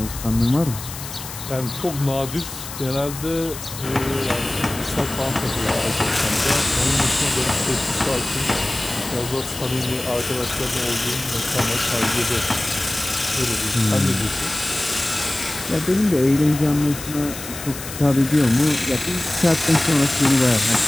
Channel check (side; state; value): left; noise; hiss, 11 dB below the sound